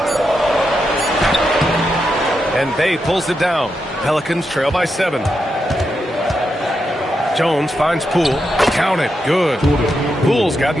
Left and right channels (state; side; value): normal; both; correlation 0.85